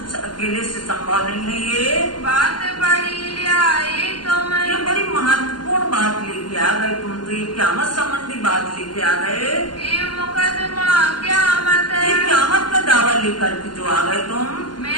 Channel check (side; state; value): right; late; 0.71 ms